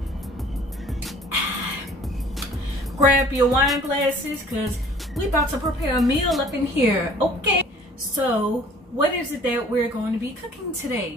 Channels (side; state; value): both; normal; correlation 0.52